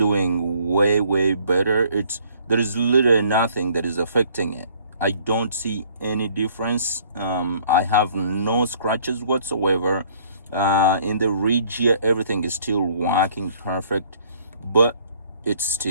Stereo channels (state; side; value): inverted; both; correlation -0.59